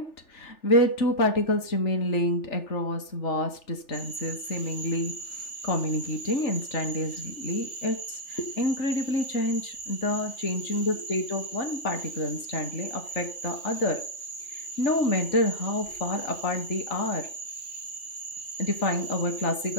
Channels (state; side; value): late; right; 3.4 ms